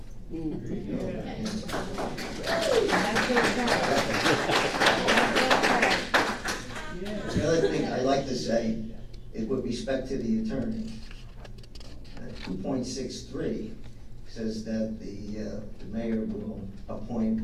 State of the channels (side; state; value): both; identical; correlation 1.00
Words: The other thing I'd like to say is with respect to the attorney, 2.63 says that the mayor will